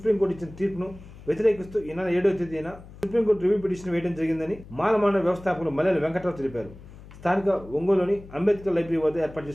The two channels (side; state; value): left; noise; hum, 18 dB below the sound